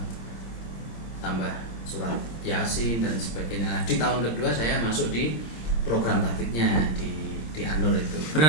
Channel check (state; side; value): late; right; 26 ms